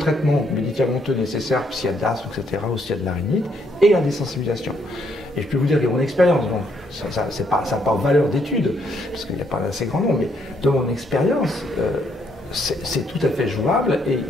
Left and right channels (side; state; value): both; normal; correlation 0.72